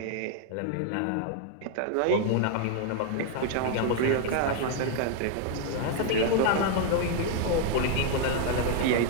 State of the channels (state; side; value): different; both; correlation 0.00